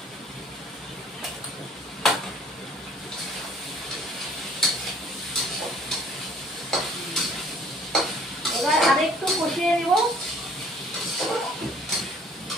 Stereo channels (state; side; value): normal; both; correlation 0.55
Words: এবার আরেকটু কষিয়ে নিব।